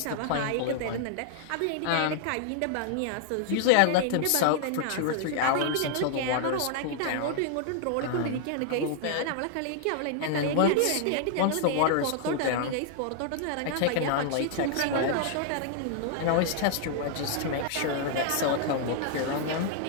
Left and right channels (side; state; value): both; different; correlation -0.01